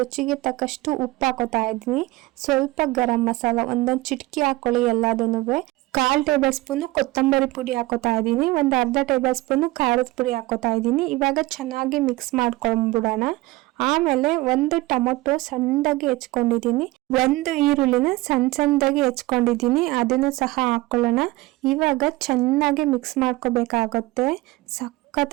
ತಕ್ಕಷ್ಟು ಉಪ್ಪು ಹಾಕೋತಾ ಇದ್ದೀನಿ. ಸ್ವಲ್ಪ ಗರಂ ಮಸಾಲ ಒಂದೊಂದು ಚಿಟಕಿ ಹಾಕೊಳ್ಳಿ ಎಲ್ಲದನ್ನೂ. 1/4 ಟೇಬಲ್ ಸ್ಪೂನು ಕೊತ್ತಂಬರಿ ಪುಡಿ ಹಾಕೋತಾ ಇದ್ದೀನಿ. ಒಂದು ಅರ್ಧ ಟೇಬಲ್ ಸ್ಪೂನು ಖಾರದ ಪುಡಿ ಹಾಕೋತಾ ಇದ್ದೀನಿ. ಇವಾಗ ಚೆನ್ನಾಗಿ ಮಿಕ್ಸ್ ಮಾಡ್ಕೊಂಡ್ಬಿಡೋಣ. ಆಮೇಲೆ ಒಂದು ಟೊಮೊಟೊ ಸಣ್ಣದಾಗಿ ಹೆಚ್ಕೊಂಡಿದ್ದೀನಿ, ಒಂದು ಈರುಳ್ಳಿನ ಸಣ್ಣದಾಗಿ ಹೆಚ್ಕೊಂಡಿದ್ದೀನಿ, ಅದನ್ನು ಸಹ ಹಾಕೊಳ್ಳೋಣ. ಇವಾಗ ಚೆನ್ನಾಗಿ ಮಿಕ್ಸ್ ಮಾಡ್ಕೋಬೇಕಾಗುತ್ತೆ.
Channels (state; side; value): quieter; left; 19.9 dB